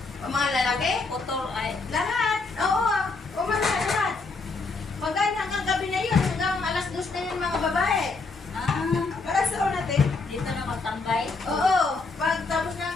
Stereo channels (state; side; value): quieter; right; 3.9 dB